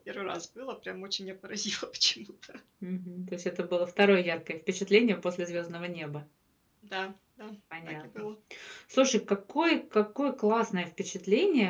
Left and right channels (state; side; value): identical; both; correlation 1.00